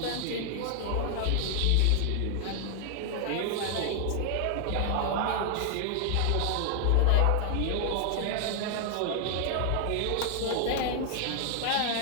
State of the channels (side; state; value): both; different; correlation 0.00